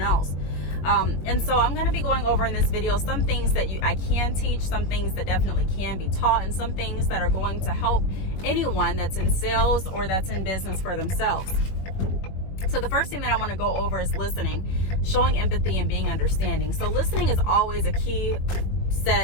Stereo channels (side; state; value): right; late; 21 ms